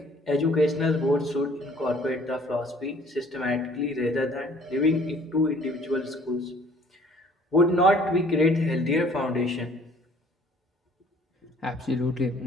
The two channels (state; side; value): normal; both; correlation 0.56